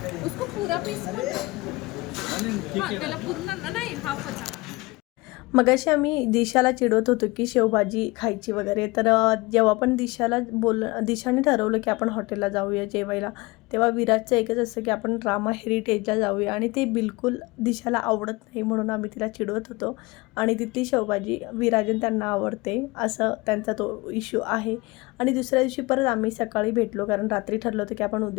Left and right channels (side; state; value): right; quieter; 23.3 dB